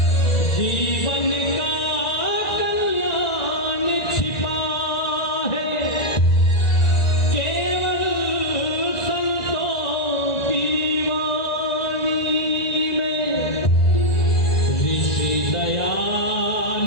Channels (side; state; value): right; late; 1.9 ms